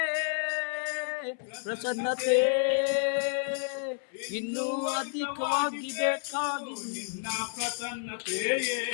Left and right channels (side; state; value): right; silent; 56 dB below the other